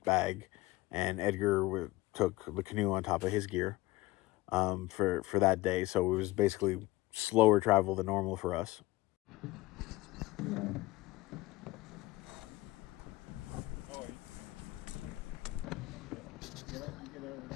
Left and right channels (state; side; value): quieter; right; 19.0 dB